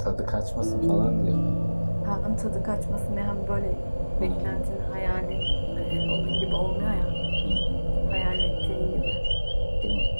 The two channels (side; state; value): both; inverted; correlation -1.00